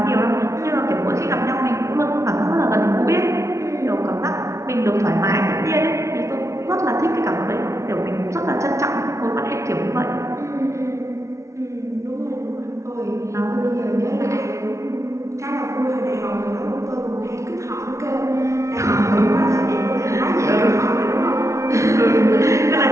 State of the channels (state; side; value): late; left; 0.14 ms